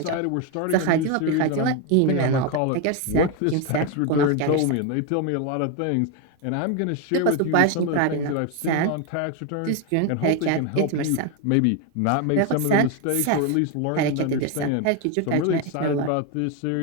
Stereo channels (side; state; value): both; different; correlation 0.02